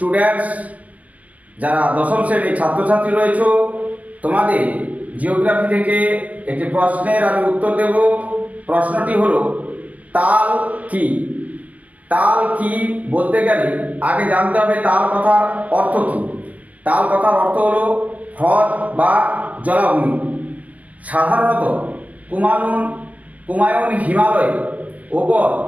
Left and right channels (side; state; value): left; late; 0.071 ms